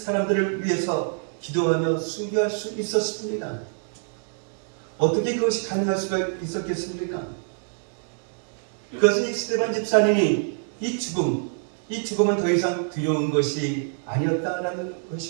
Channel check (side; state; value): left; silent; 61 dB below the other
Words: 위해서 기도하며 순교할 수 있었습니다. 어떻게 그것이 가능할 수가 있었겠습니까? 그것은 이 스데반 집사님이 이 죽음은 더 이상 두려운 것이 아니었다라는